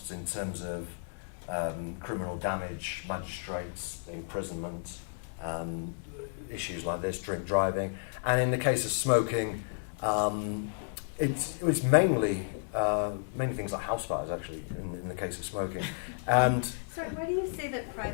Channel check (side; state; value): right; silent; 56 dB below the other